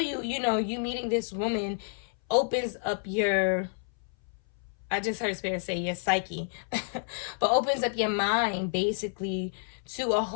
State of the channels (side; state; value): right; silent; 58 dB below the other